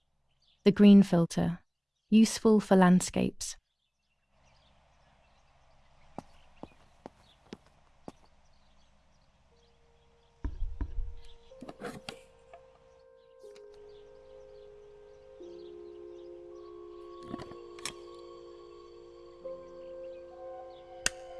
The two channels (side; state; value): both; identical; correlation 1.00